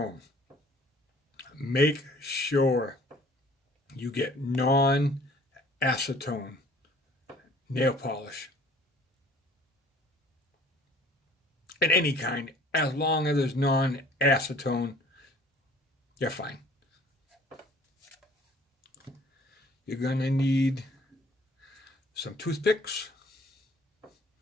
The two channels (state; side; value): normal; both; correlation 0.53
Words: Make sure you get non-acetone nail polish. In any kind, as long as there's non-acetone, you're fine. You're going to need some toothpicks